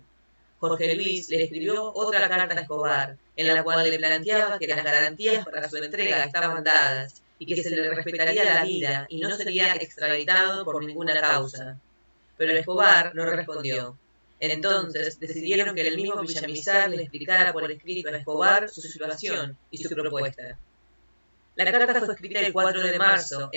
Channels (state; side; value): inverted; both; correlation -1.00